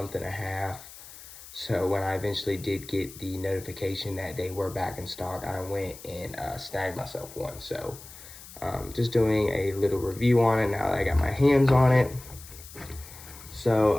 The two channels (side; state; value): left; noise; hiss, 17 dB below the sound